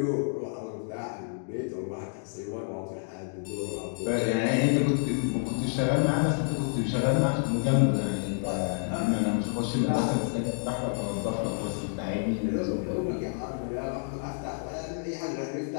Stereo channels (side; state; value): right; silent; digital silence